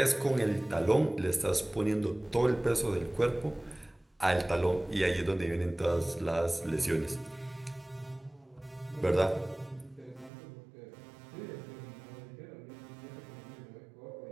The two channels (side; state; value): left; drops out; at 10.3 s